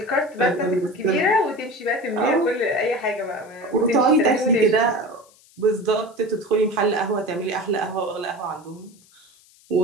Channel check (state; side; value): noise; left; hiss, 28 dB below the sound